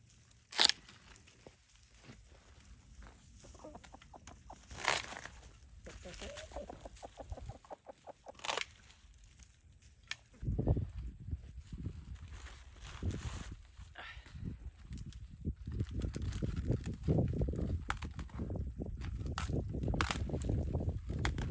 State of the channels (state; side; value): identical; both; correlation 1.00